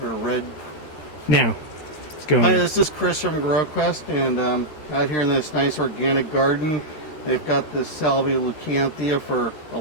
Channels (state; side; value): late; right; 13 ms